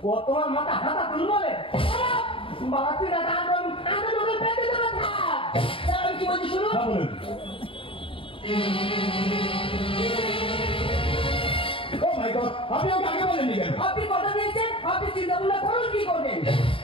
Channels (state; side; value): late; right; 0.26 ms